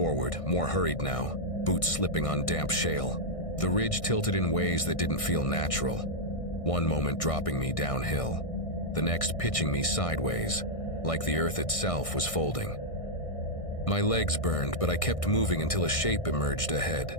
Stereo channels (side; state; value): right; late; 1.6 ms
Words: more hurried now, boots slipping on damp shale. The ridge tilted in ways that didn't feel natural. One moment dropping me downhill, the next pitching me sideways, like the earth itself was folding. My legs burned, but I kept moving until a shape emerged ahead.